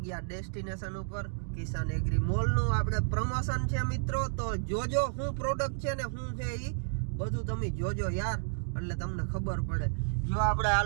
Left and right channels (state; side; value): silent; left; digital silence